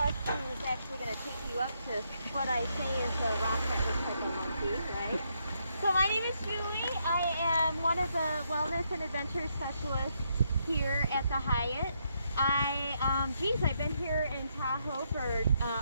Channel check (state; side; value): inverted; both; correlation -0.77